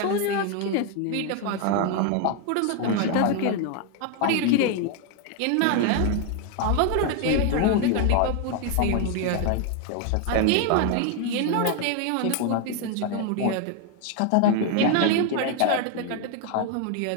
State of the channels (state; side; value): different; both; correlation 0.01